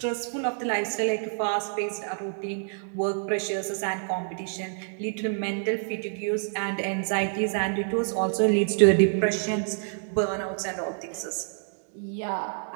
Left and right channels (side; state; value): left; silent; digital silence